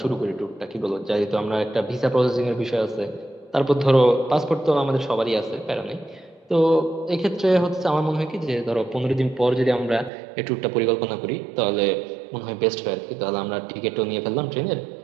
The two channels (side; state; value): left; drops out; at 10.1 s